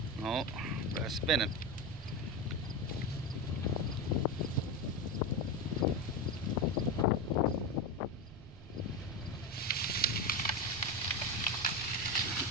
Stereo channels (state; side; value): noise; right; rumble, 16 dB below the sound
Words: Oh, that's spinning.